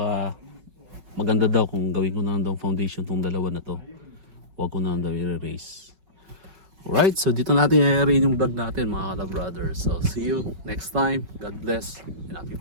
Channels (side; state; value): left; late; 5.3 ms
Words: maganda daw kung gawin ko na daw foundation tong dalawa na to. Huwag ko na daw i-erase. Alright, so dito natin i-arrange yung vlog natin mga ka-brothers. So see you next time. God bless and happy